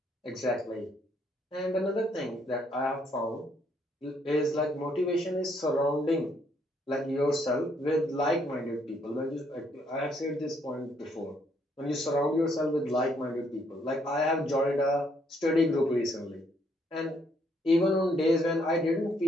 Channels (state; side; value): normal; both; correlation 0.70